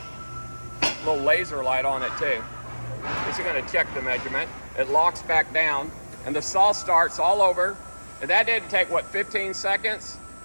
Little laser light on it too. This is going to check the measurement. It locks back down and the saw starts all over. And that didn't take, what, 15 seconds?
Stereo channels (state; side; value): inverted; both; correlation -1.00